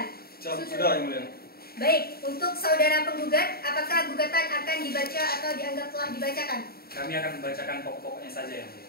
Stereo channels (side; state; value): right; late; 0.45 ms